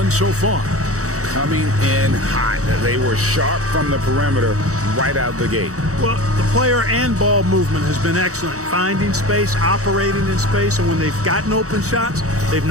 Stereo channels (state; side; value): late; left; 0.65 ms